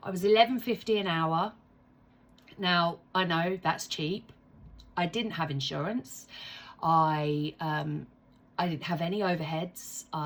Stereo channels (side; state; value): both; identical; correlation 1.00